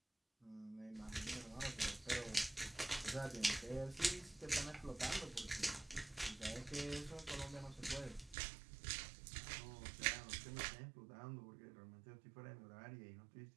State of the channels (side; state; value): left; drops out; at 8.3 s